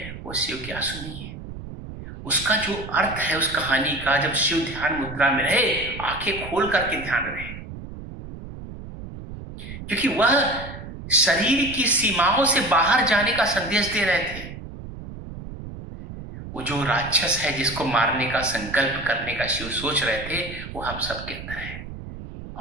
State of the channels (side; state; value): right; noise; rumble, 11 dB below the sound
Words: वो शिव की आंसू नहीं है। उसका जो अर्थ है उस कहानी का, जब शिव ध्यान मुद्रा में रहे, आंखें खोल करके ध्यान रहे, क्योंकि वह शरीर की सीमाओं से बाहर जाने का संदेश दे रहे थे। वो जो राक्षस है जिसको मारने का संकल्प करने का शिव सोच रहे थे, वो हम सबके अंदर है।